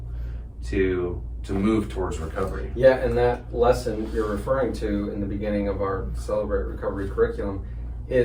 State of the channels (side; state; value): both; identical; correlation 1.00